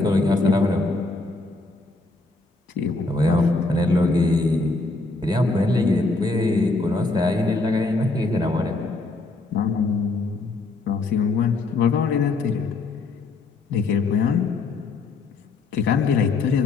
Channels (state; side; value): quieter; right; 3.4 dB